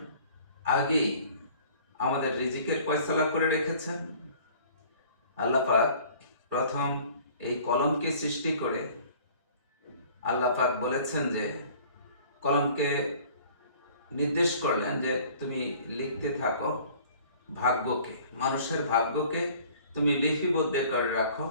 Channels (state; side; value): inverted; both; correlation -0.51